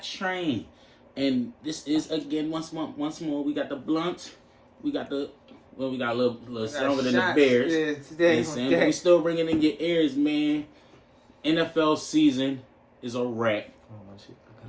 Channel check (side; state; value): both; identical; correlation 1.00